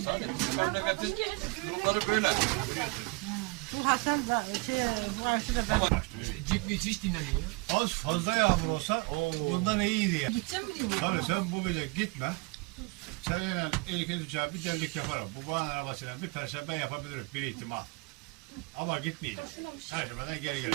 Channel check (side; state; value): left; quieter; 27.9 dB